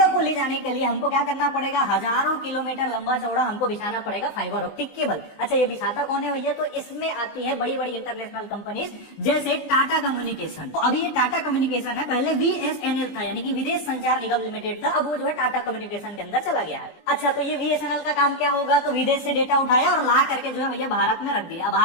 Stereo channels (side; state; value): right; late; 20 ms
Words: को ले जाने के लिए हमको क्या करना पड़ेगा, हजारों किलोमीटर लंबा चौड़ा हमको बिछाना पड़ेगा फाइबर ऑप्टिक केबल। अच्छा, ये बिछाता कौन है भैया, तो इसमें आती है बड़ी बड़ी इंटरनेशनल कंपनीज जैसे टाटा कम्युनिकेशन। तो अभी ये टाटा कम्युनिकेशन है, पहले बीएसएनएल था यानी कि विदेश संचार निगम लिमिटेड था, अब वो जो है टाटा कम्युनिकेशन के अंदर चला गया है। अच्छा, तो ये बीएसएनएल का काम क्या होगा, तो विदेश से डेटा उठाया और ला करके जो है भैया भारत में रख दिया।